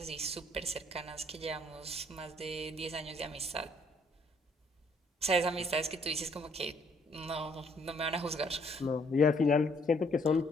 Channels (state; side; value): normal; both; correlation 0.65